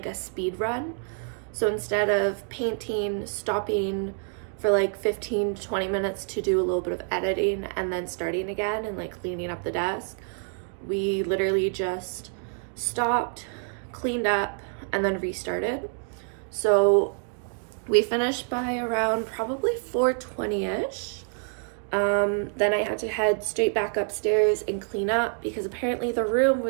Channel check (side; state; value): left; silent; 57 dB below the other